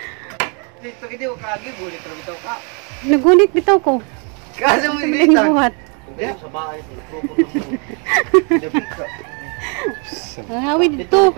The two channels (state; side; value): quieter; left; 36.9 dB